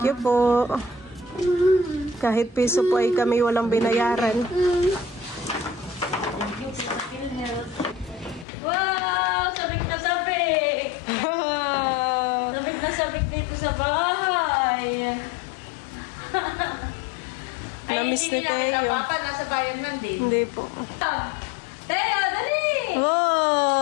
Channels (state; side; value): drops out; right; at 8.5 s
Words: you po. Kahit piso po ay kami walang binayaran. Wow! Sabik na sabik! Sabik na sabik dito sa bahay. Namiss ni Teo. Nasa bayan man din. Hindi po. Teo, dali!